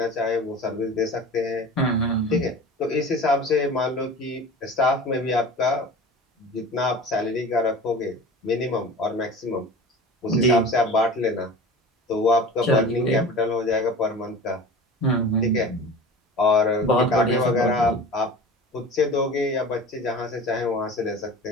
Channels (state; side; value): normal; both; correlation 0.37